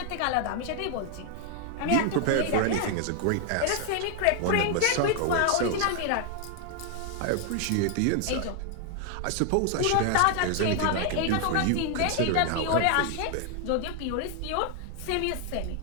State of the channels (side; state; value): both; different; correlation 0.00